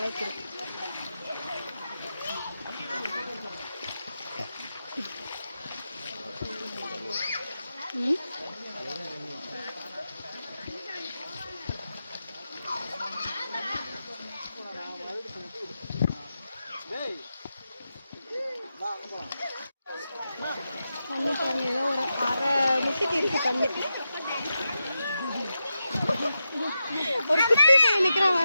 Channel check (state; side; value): inverted; both; correlation -0.89